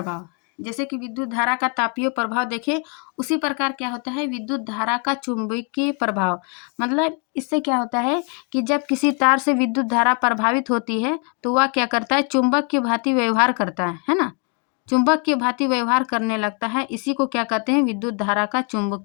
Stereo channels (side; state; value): right; quieter; 37.6 dB